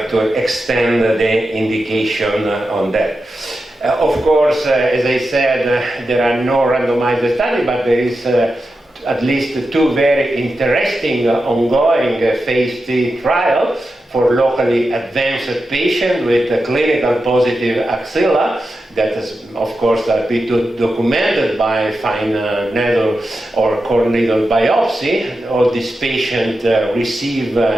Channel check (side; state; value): both; normal; correlation 0.90